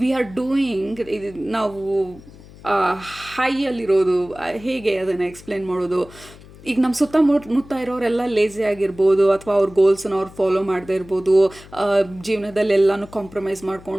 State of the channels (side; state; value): left; noise; hum, 20 dB below the sound